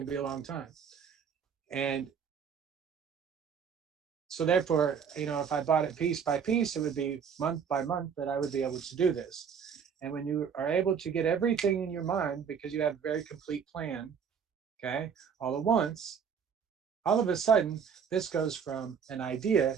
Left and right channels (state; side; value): quieter; left; 7.0 dB